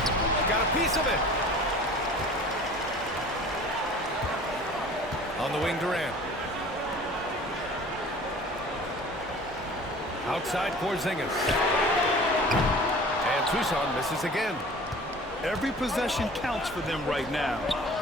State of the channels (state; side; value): normal; both; correlation 0.44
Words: Got a piece of it. On the wing, Durant. Outside, Porzingis. And Tucson misses again. Every possession counts for them right now.